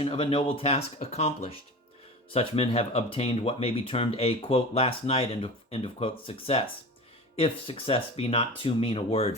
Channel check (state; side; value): normal; both; correlation 0.33